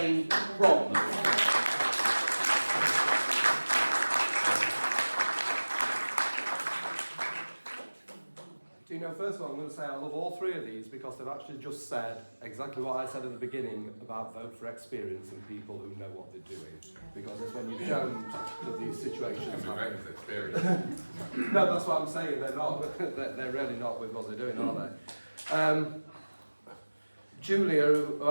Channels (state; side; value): inverted; both; correlation -1.00